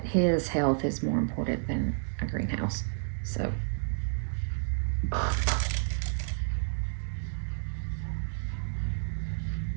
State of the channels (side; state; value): left; silent; 57 dB below the other